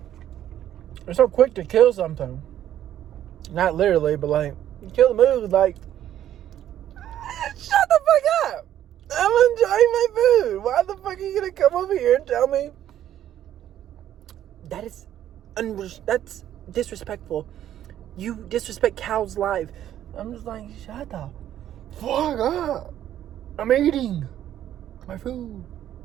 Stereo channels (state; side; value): quieter; left; 11.4 dB